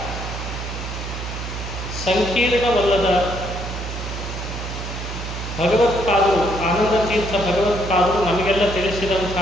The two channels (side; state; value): right; noise; hum, 7 dB below the sound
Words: ಸಂಕೀರ್ಣವಲ್ಲದ ಭಗವತ್ಪಾದರು, ಆನಂದತೀರ್ಥ ಭಗವತ್ಪಾದರು ನಮಗೆಲ್ಲ